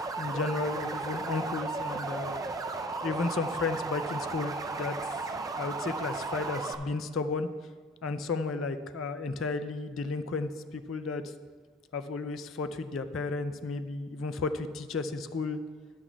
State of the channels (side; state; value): both; normal; correlation 0.47